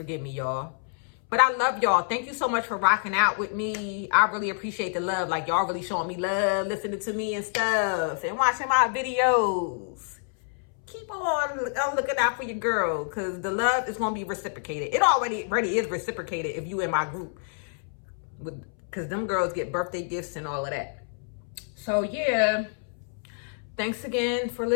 me, y'all. But I love y'all. Thank you so much for rocking out with me. I really appreciate the love. Like, y'all really showing me love, listening to me and stuff, and watching my videos. Keep on looking out for your girl, because the love is going to be reciprocated. It already is reciprocated if you in my group. Because them girls get birthday gifts and all of that. So, yeah. Thanks again for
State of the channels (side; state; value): right; silent; 60 dB below the other